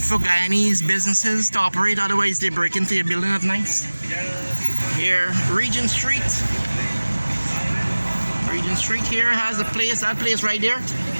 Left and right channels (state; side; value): inverted; both; correlation -1.00